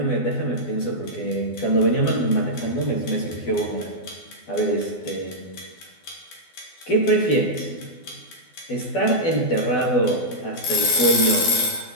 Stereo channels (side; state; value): right; late; 12 ms